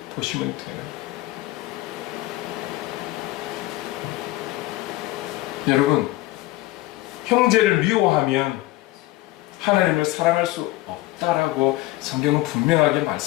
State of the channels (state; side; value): quieter; right; 17.9 dB